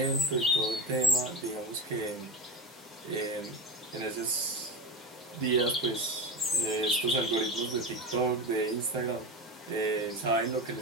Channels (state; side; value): normal; both; correlation 0.21